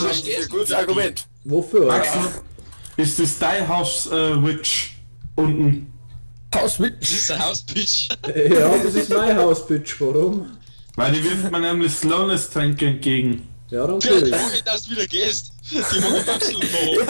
ist ein gutes Argument. Wofür? Max, ist das dein Haus Witch unten? Hauswitch. Das ist ein Hausbitch. Ja, das ist mein Haus, Bitch. Warum? Weil die wirft man nämlich Slowness-Tränke entgegen. Ja, dann Vielleicht kill. mag ich, dass du wieder gehst. Die mag ich absolut noch.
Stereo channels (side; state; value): both; inverted; correlation -1.00